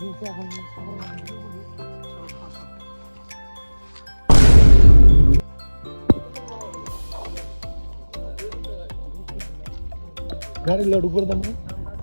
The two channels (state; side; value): inverted; both; correlation -1.00